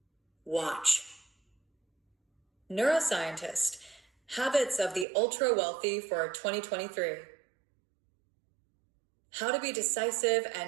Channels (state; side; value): drops out; left; at 5.1 s